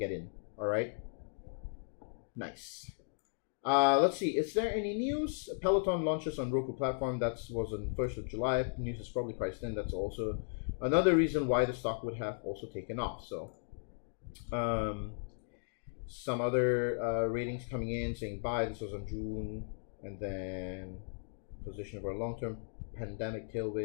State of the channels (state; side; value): silent; right; digital silence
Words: in. All right. Nice. Let's see. Is there any news? Peloton launches on Roku platform. That was on 1st of July. News is probably priced in. That's also another reason why the stock would have also taken off. So, some other ratings coming in saying buy. This was on June, and then position for a long-term pandemic